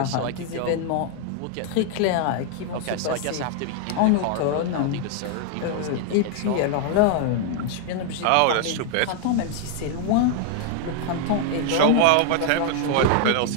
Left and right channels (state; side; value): different; both; correlation 0.00